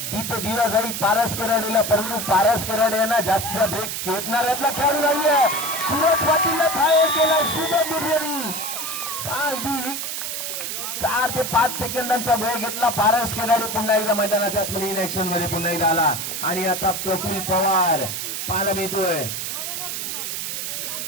तिथे दिला जाईल पारस खराडेला, परंतु पारस खराडे यांना जास्त ब्रेक खेळणाऱ्यातला खेळाडू नाहीये. सूरज पाटीलला फायर केला शुभम बिर्जेनी. अगदी 4 ते 5 सेकंदांचा वेळ घेतला. पारस खराडे पुन्हा एकदा मैदानाच्या आतमध्ये इन ऍक्शन मध्ये पुन्हा एकदा आला. आणि आता प्रफुल्ल पवार पाहायला मिळतोय.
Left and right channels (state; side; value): noise; right; hiss, 4 dB below the sound